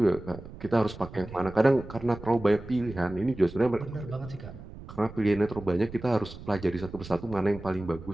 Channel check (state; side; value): noise; right; rumble, 14 dB below the sound